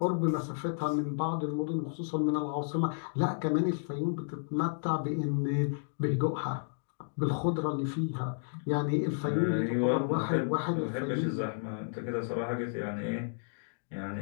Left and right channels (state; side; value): silent; right; digital silence